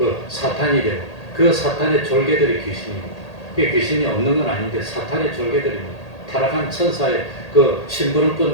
사탄이 되고 그 사탄의 졸개들이 귀신입니다. 귀신이 없는 건 아닌데 사탄의 졸개들입니다. 타락한 천사의 그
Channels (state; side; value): late; right; 1.8 ms